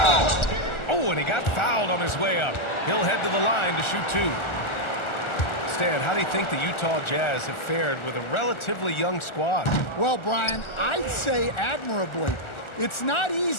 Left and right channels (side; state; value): right; late; 1.4 ms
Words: Oh, and he got fouled on his way up. He'll head to the line to shoot 2. Stan, how do you think the Utah Jazz have fared with a relatively young squad? Well, Brian, I'd say admirably. It's not